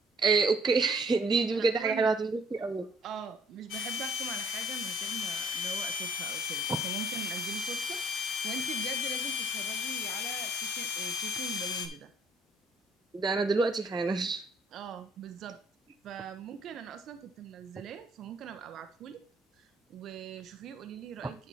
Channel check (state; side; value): normal; both; correlation 0.61